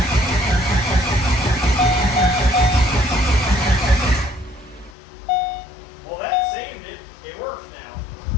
Well, that saved it. It works now.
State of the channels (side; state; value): right; drops out; at 4.9 s